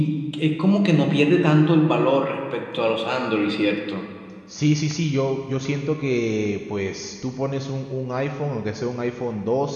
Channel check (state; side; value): identical; both; correlation 1.00